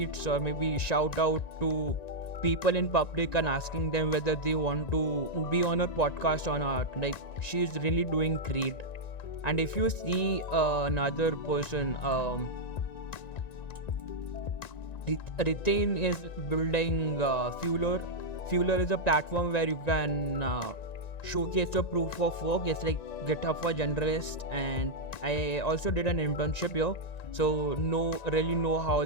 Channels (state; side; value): late; right; 1.9 ms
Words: or maybe shout out to people in public and asking them whether they want to be on her podcast or not. Like she's really doing great. And if you see another person, Ritain is building Fueler. Fueler is a platform where you can showcase your proof of work. It's like GitHub for generalists, and I also did an internship here, so really know how